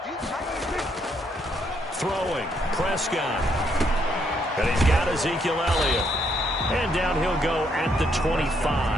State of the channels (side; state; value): both; normal; correlation 0.73